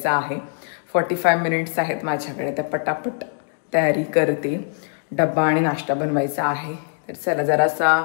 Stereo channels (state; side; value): silent; right; digital silence